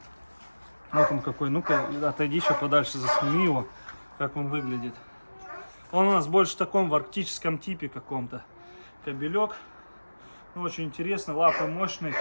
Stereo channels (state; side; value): inverted; both; correlation -1.00